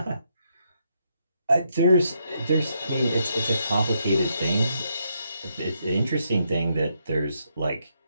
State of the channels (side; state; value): both; inverted; correlation -0.77